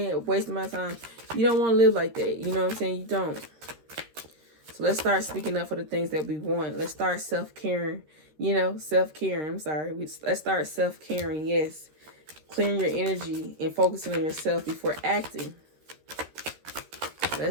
Wasting my time. You don't want to live like that. You know what I'm saying? You don't. So let's start speaking up for the things that we want. Let's start self-caring. You know, self-caring. I'm sorry. Let's start self-caring, yes. Clearing your energy and focusing on yourself before acting.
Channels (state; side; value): late; left; 13 ms